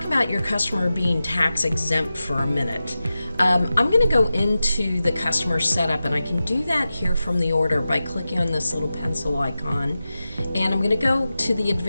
about your customer being tax exempt for a minute. I'm going to go into the customer setup, and I can do that here from the order by clicking on this little pencil icon. And I'm going to go to the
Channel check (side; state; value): both; inverted; correlation -0.93